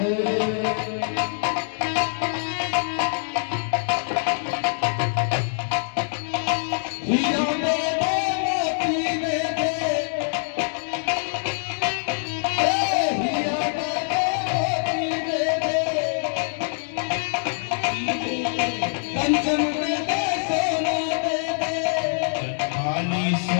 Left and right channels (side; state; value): right; silent; 62 dB below the other